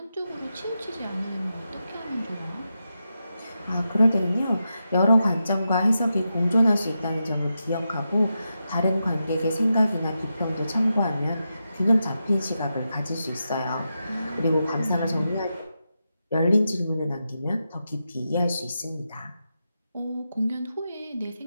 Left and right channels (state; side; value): inverted; both; correlation -0.88